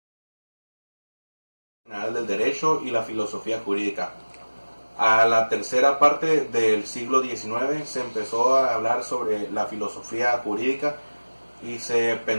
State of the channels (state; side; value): inverted; both; correlation -1.00